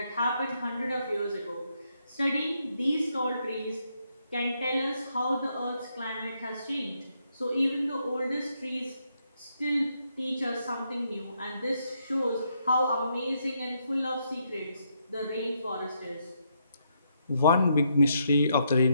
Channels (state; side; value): inverted; both; correlation -0.77